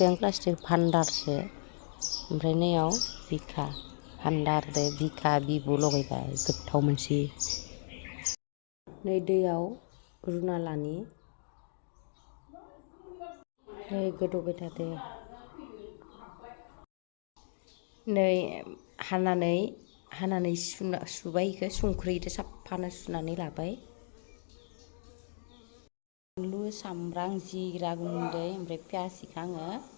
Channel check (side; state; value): right; silent; digital silence